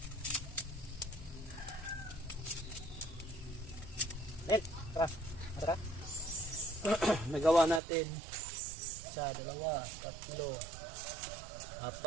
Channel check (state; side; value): drops out; left; at 7.8 s